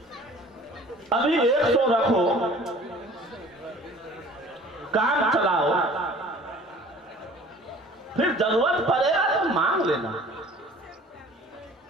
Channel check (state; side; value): normal; both; correlation 0.48